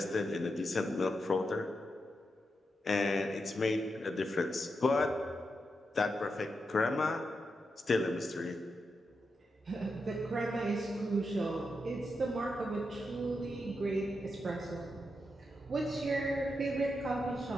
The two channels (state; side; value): normal; both; correlation 0.86